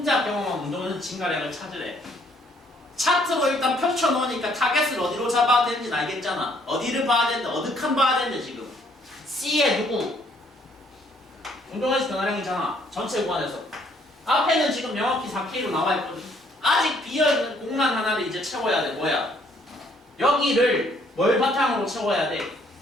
경험한 운동에는 증가량을 찾으래. 차트로 일단 펼쳐놓으니까 타겟을 어디로 잡아야 되는지 알겠잖아. 어디를 봐야 되는데 어느 칸 봐야 되는데 지금 C에 누구? 운동에서 변화량이잖아. 전체 구간에서. 앞에는 지금 명확히 4K로 나와있거든. 아직 비어있는 공간 하나를 이제 채워야 돼. 뭐야? 여기를 뭘 바탕으로 채워야 돼?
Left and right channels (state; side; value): normal; both; correlation 0.65